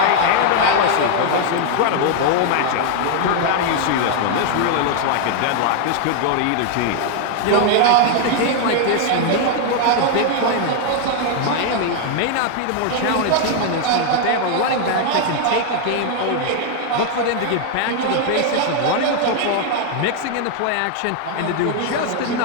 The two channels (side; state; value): both; different; correlation 0.00